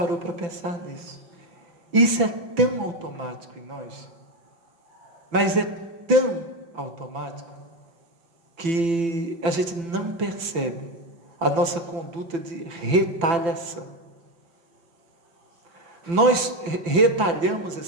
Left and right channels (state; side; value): late; left; 6.0 ms